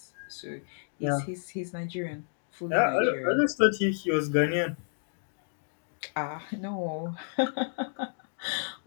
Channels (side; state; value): right; silent; digital silence